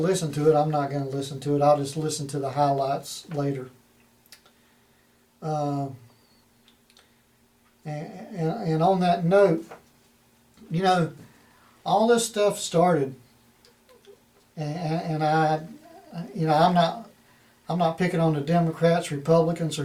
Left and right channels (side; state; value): both; identical; correlation 1.00